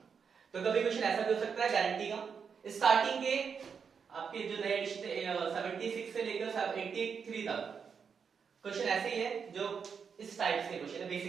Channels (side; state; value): left; quieter; 6.3 dB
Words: तो कभी क्वेश्चन ऐसा भी हो सकता है गारंटी का, स्टार्टिंग के आपके जो नए एडिशन 76 से लेकर 83 तक क्वेश्चन ऐसे ही है, जो इस टाइप के क्वेश्चन है,